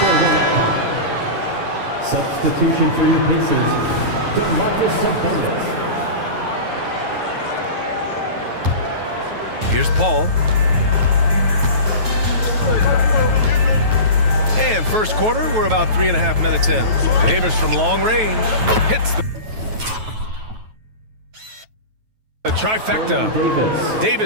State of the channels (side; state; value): left; late; 9.2 ms